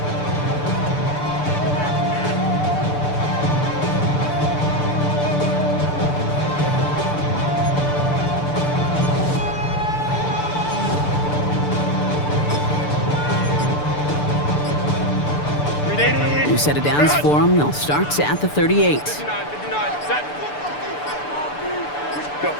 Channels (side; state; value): right; late; 6.8 ms